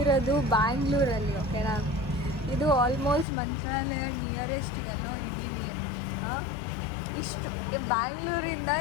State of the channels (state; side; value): drops out; right; at 3.2 s